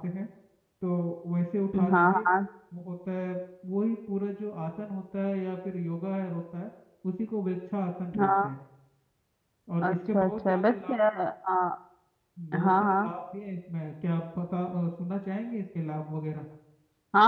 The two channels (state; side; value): identical; both; correlation 1.00